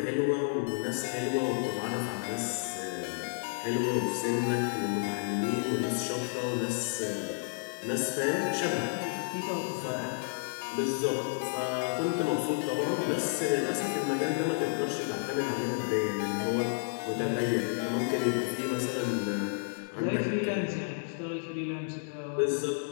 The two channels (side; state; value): right; silent; 57 dB below the other